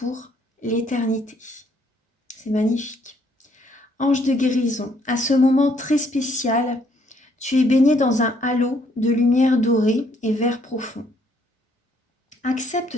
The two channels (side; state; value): both; normal; correlation 0.67